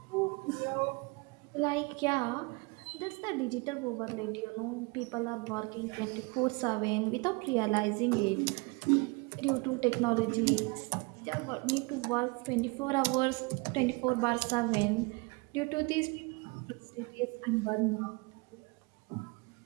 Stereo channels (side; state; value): left; quieter; 28.4 dB